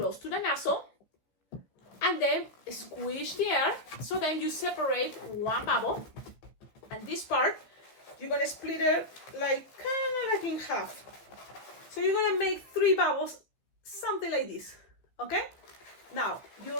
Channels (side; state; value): right; late; 15 ms